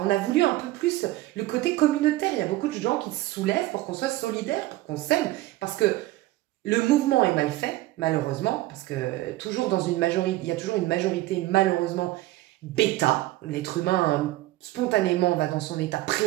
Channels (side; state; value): left; quieter; 17.3 dB